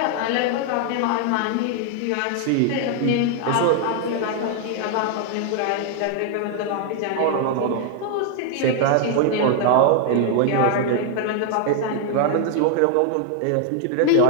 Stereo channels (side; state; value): both; different; correlation 0.00